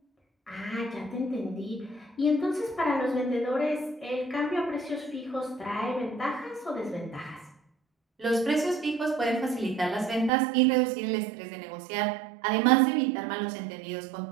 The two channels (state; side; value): drops out; left; at 10.3 s